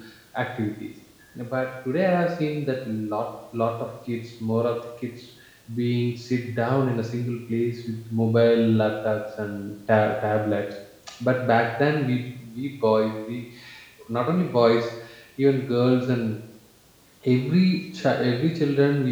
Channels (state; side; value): identical; both; correlation 1.00